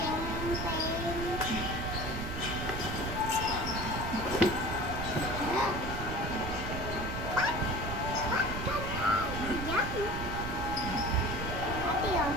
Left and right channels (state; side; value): noise; right; rumble, 5 dB below the sound